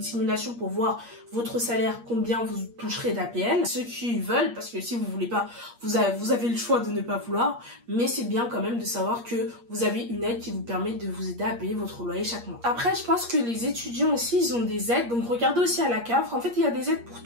pour voir votre salaire, combien vous toucherez d'APL. Ceux qui veulent, parce que si vous voulez pas, vous avez le choix de ne pas vouloir, mais c'est bien quand même de savoir que vous avez une aide qui vous permet de vous aider à payer votre loyer chaque mois. Après, je pense que les étudiants aussi, ils ont des aides, donc regardez aussi à la CAF. En fait, il y a des aides pour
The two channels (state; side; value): late; left; 8.5 ms